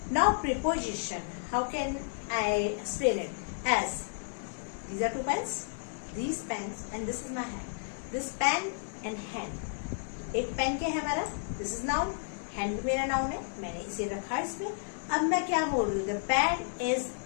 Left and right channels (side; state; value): right; silent; 56 dB below the other